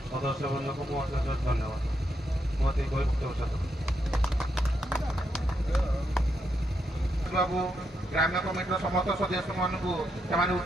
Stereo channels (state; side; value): normal; both; correlation 0.81